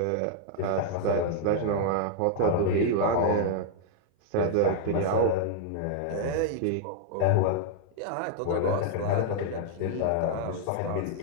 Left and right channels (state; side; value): different; both; correlation -0.01